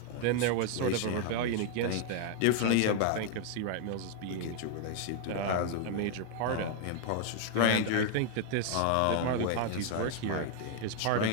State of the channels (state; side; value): different; both; correlation 0.00